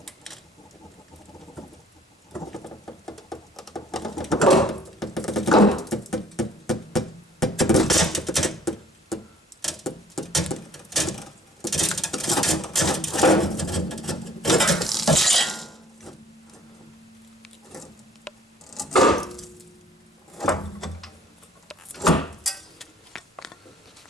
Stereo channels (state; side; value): normal; both; correlation 0.57